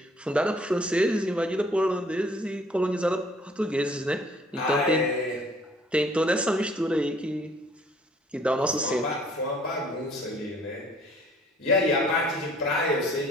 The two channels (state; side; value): normal; both; correlation 0.57